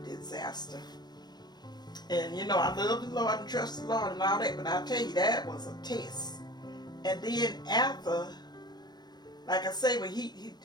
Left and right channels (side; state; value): right; late; 0.20 ms